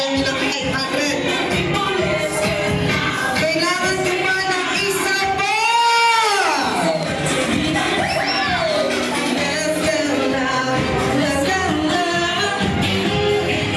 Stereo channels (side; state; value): both; identical; correlation 1.00